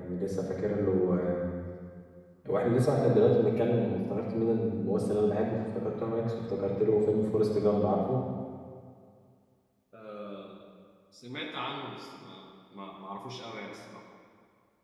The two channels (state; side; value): identical; both; correlation 1.00